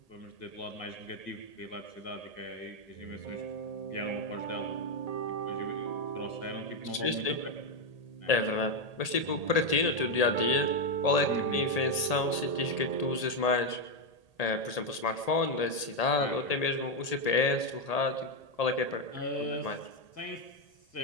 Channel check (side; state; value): right; late; 1.8 ms